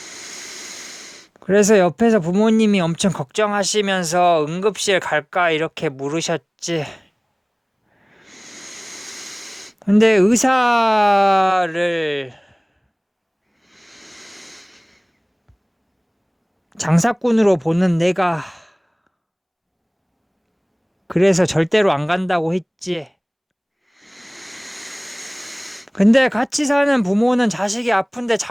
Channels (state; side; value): identical; both; correlation 1.00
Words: 그래서 옆에서 부모님이 엄청 걱정하시면서 응급실 갈까 이렇게 물으셨지. 근데 의사를 장사꾼으로 보는 내가 그래서 절대로 안 간다고 했지. 근데 같이 사는 부모는 자식이 아픈데